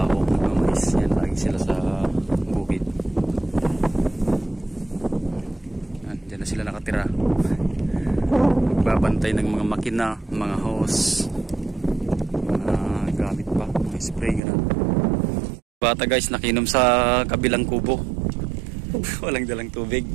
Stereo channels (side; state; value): left; drops out; at 14.4 s